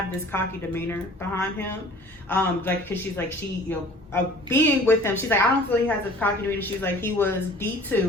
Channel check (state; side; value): normal; both; correlation 0.48